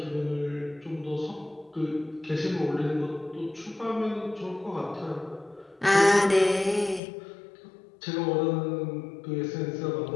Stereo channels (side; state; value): right; drops out; at 7.0 s